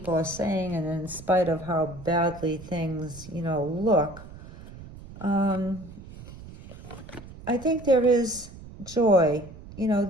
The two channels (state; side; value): noise; right; rumble, 16 dB below the sound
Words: are saying, and in spite of how badly things, look, I think there is joy, you know,